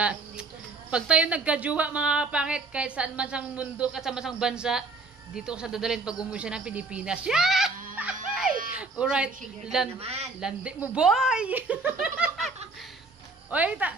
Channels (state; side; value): quieter; left; 3.7 dB